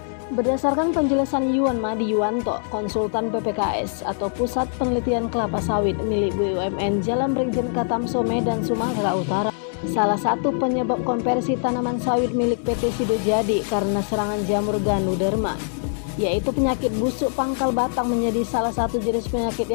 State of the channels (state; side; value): silent; right; 63 dB below the other